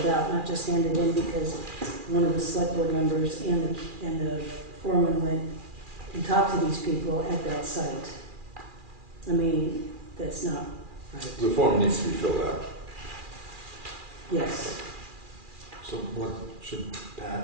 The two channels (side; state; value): left; late; 2.4 ms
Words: out, not just handed in because one of the select board members and the foreman went and talked to these people at that site. I mean, that's not right. The form needs to be filled out. Yes. So what, should